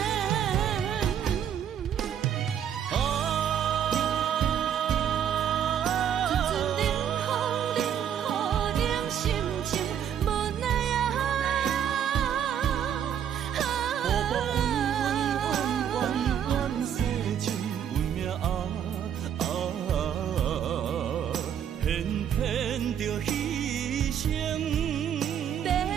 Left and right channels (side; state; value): left; quieter; 9.1 dB